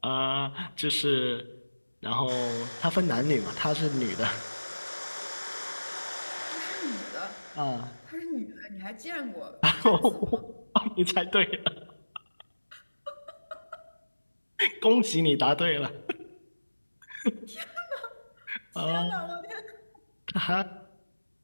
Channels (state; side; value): inverted; both; correlation -1.00